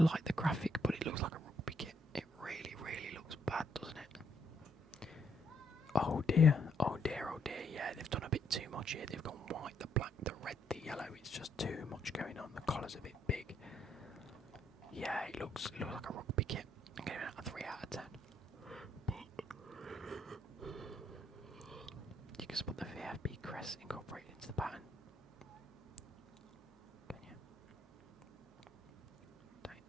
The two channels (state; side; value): normal; both; correlation 0.72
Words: like the graphic, but it looks like a rugby kit. It really looks bad, doesn't it? Oh dear. Yeah, they've done a bit too much here. They've gone white, the black, the red, the yellow. It's just too much going on. The collar's a bit big. Yeah, it looks like a rugby kit. I'm giving it a 3 out of 10. You can spot the VFB crest incorporated into the pattern. Can you? Don't